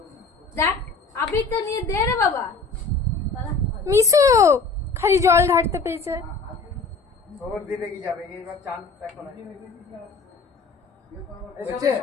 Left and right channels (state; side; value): quieter; right; 4.0 dB